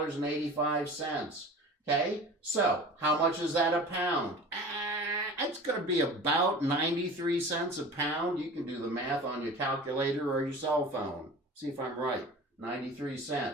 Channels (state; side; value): normal; both; correlation 0.38